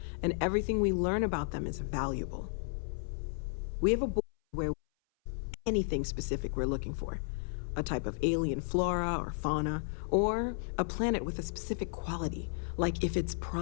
and everything we learn about them is valuable. We have a board where anything specific we're looking for, a type of alien flora or fauna, or a planet with a specific quality, like if it's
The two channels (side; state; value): right; silent; 55 dB below the other